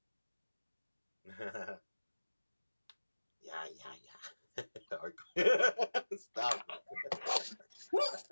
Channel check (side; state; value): both; inverted; correlation -1.00